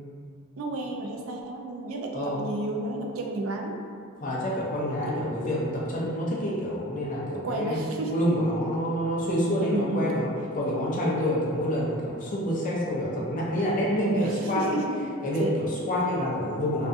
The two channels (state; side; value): normal; both; correlation 0.40